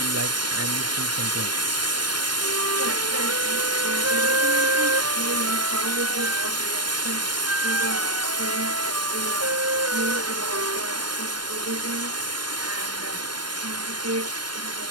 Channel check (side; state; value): left; late; 0.71 ms